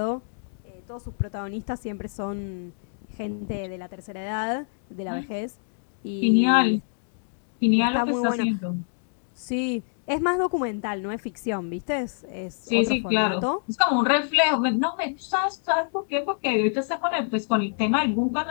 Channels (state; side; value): silent; right; 61 dB below the other